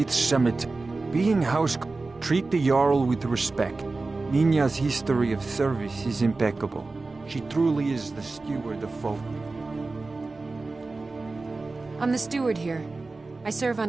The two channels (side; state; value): left; quieter; 3.6 dB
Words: Cemetery. Being house, treat the Jarl with respect. Nina's history of service is impeccable. She truly is the steward of Falkreath. I'm the steward here. I serve